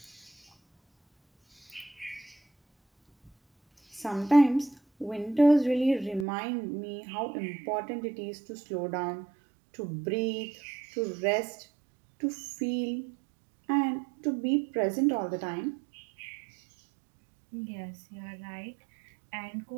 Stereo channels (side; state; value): left; drops out; at 6.2 s